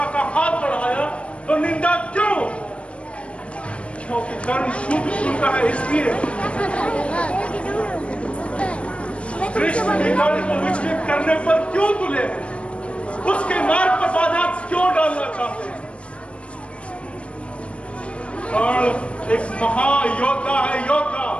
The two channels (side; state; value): right; late; 0.060 ms